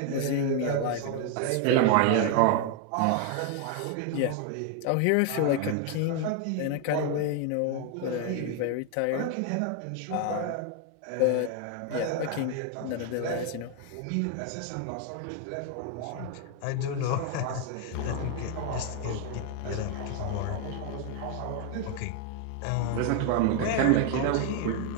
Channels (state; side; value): different; both; correlation 0.00